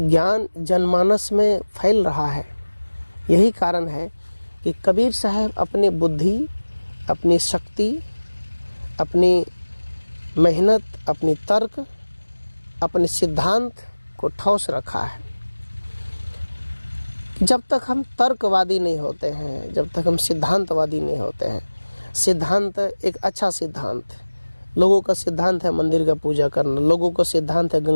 जनमानस में फैल रहा है। यही कारण है कि कबीर साहब अपने बुद्धि, अपनी शक्ति, अपनी मेहनत, अपनी तर्क, अपने सिद्धांत को ठोस रखा है। जब तक हम तर्कवादी नहीं होते हैं, जब तक हम सिद्धांतवादी नहीं होते हैं, सिद्धांत एक अच्छा सिद्धांत, लोगों का सिद्धांत है मंदिर का पूजा करना, लोगों का सिद्धांत है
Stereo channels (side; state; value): both; inverted; correlation -1.00